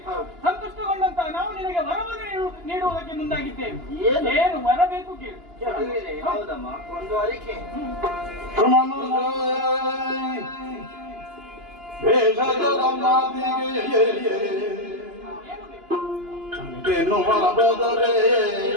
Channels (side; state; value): left; late; 2.9 ms